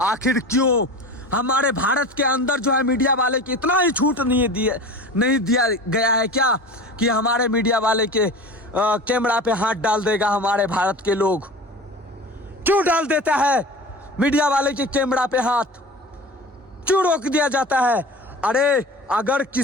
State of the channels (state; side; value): normal; both; correlation 0.34